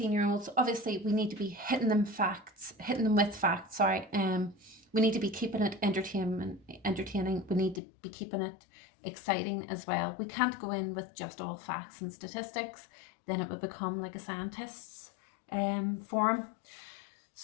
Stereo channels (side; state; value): right; drops out; at 7.8 s